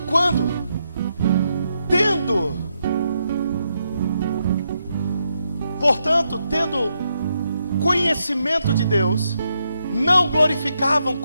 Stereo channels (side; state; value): both; inverted; correlation -0.81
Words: tendo conhecimento de Deus, não glorificavam